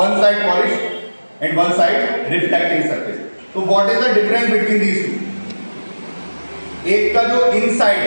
side polish and one side reflecting surface. तो what is the difference between these two? एक का जो इनसाइड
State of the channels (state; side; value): inverted; both; correlation -1.00